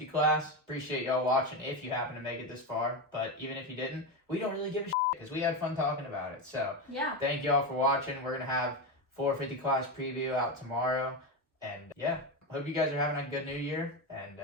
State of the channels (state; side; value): normal; both; correlation 0.14